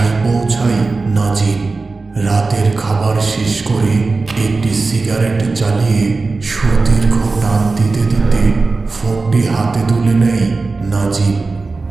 পৌঁছায় নাজিম। রাতের খাবার শেষ করে একটি সিগারেট জ্বালিয়ে সুদীর্ঘ টান দিতে দিতে ফোনটি হাতে তুলে নেয় নাজিম।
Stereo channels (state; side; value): quieter; left; 3.8 dB